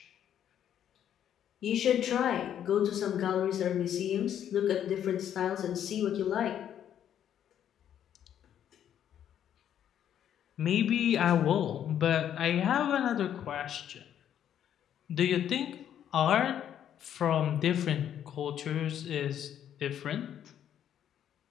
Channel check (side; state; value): right; quieter; 10.0 dB